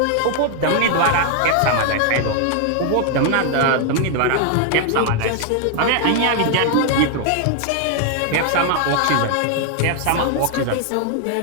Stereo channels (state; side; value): different; both; correlation 0.00